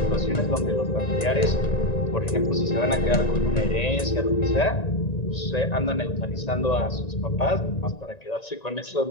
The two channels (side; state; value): right; late; 1.9 ms